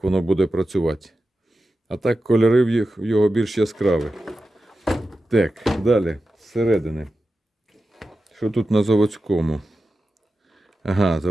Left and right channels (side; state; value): both; normal; correlation 0.92